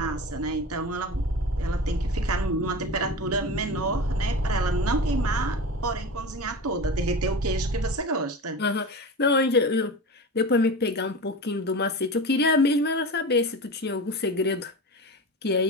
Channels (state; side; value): normal; both; correlation 0.29